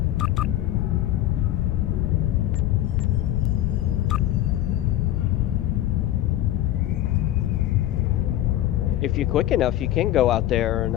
If you're quick enough, you can go out there and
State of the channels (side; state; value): right; quieter; 13.6 dB